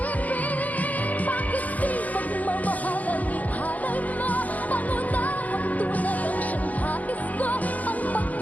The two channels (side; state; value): right; late; 0.076 ms